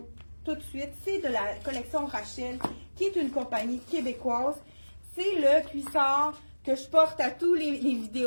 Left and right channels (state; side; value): inverted; both; correlation -1.00